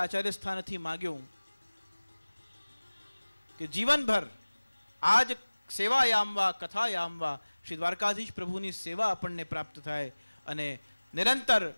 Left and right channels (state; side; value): inverted; both; correlation -1.00